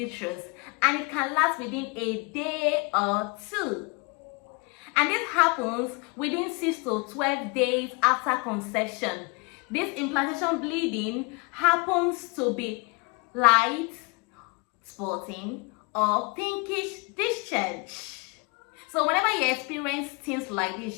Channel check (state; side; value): quieter; right; 30.3 dB